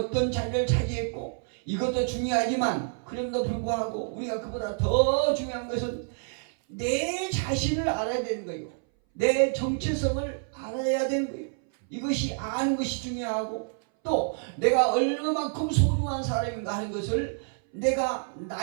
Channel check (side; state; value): left; silent; 59 dB below the other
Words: 자리를 차지했고 이것도 중요하지만 그럼에도 불구하고 우리가 그보다 더 중요한 것은 내 자신을 알아야 되는 거예요. 내 정체성을 알아야 되는 거예요. 이것이 아는 것이 중요하고 또 내가 얼마만큼 소중한 사람인가 하는 것을 내가